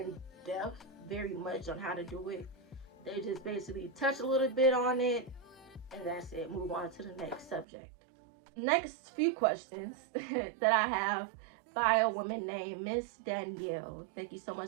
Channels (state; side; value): drops out; left; at 7.7 s